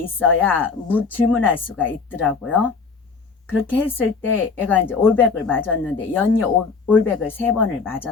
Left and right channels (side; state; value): right; quieter; 4.9 dB